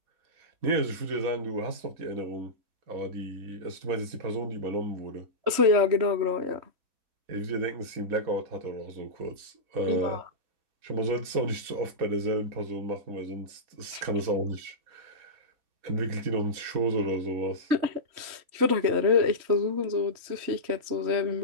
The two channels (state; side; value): late; left; 3.1 ms